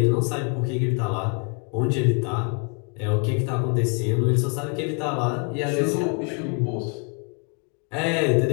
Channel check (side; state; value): right; quieter; 35.5 dB